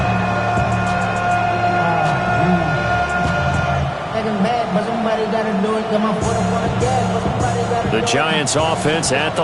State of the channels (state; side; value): identical; both; correlation 1.00